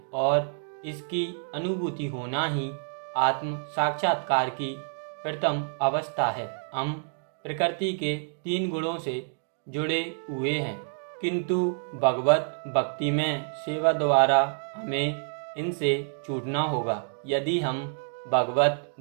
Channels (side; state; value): left; silent; digital silence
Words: और इसकी अनुभूति होना ही आत्म साक्षात्कार की प्रथम अवस्था है। हम प्रकृति के 3 गुणों से जुड़े हुए हैं, किंतु भगवत भक्ति में सेवा द्वारा हमें इनसे छूटना होगा। यदि हम भगवत